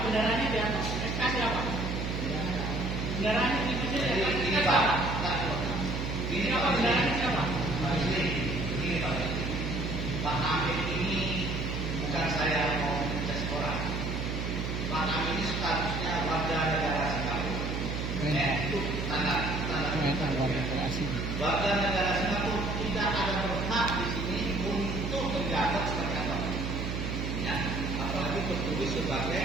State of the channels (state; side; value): noise; right; hum, 3 dB below the sound